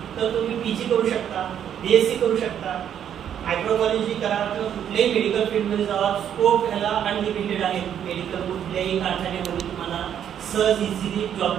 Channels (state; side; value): quieter; left; 9.4 dB